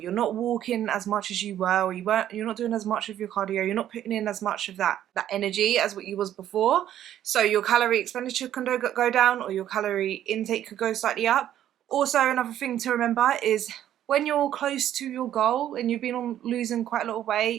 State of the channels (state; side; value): quieter; left; 11.5 dB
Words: not walking as much as you were, or you're not doing as much of your cardio, you're not putting in as much of that energy as what you was before. So your calorie expenditure can go down, or your calorie intake could go slightly up. Also, another thing to remember is when you're close to your goal and you've been on losing quite a lot of